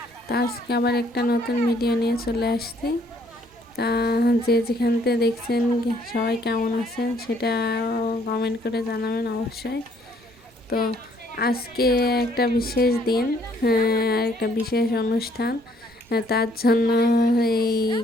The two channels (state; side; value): normal; both; correlation 0.64